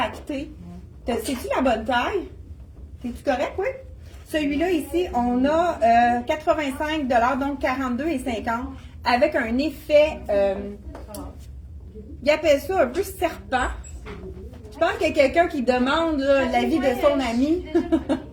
C'est-tu la bonne taille? C'est-tu correct, oui? Celui-là, ici, on a 85 $, donc 42,50 $, avec un effet, il appelle ça un peu serpent. Je pense qu'il y a quelqu'un qui demande l'avis de son ami.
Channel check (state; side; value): identical; both; correlation 1.00